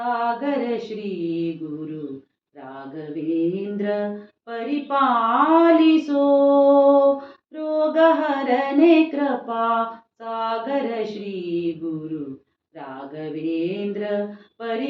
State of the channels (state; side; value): identical; both; correlation 1.00